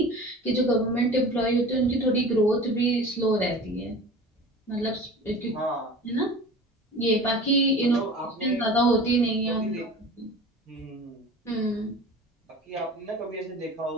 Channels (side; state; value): both; normal; correlation 0.39